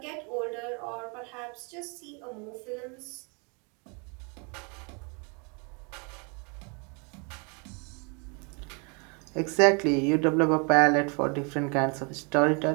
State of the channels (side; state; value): left; quieter; 34.0 dB